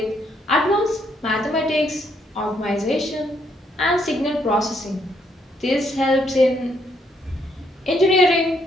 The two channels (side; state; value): both; normal; correlation 0.73